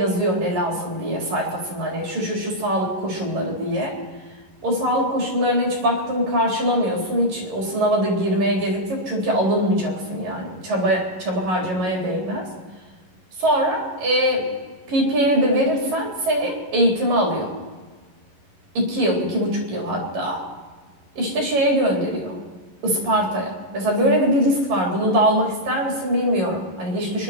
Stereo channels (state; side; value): late; left; 11 ms